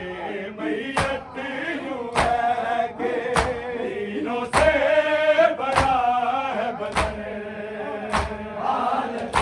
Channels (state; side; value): identical; both; correlation 1.00